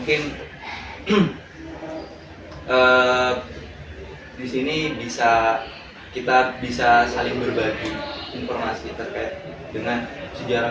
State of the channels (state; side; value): identical; both; correlation 1.00